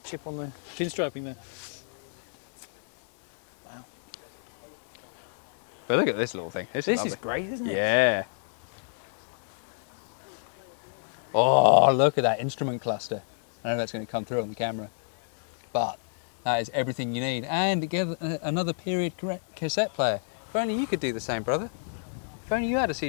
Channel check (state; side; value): silent; right; digital silence